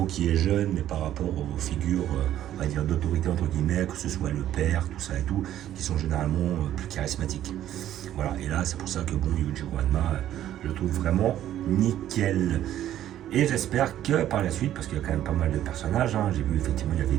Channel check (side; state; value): left; quieter; 12.1 dB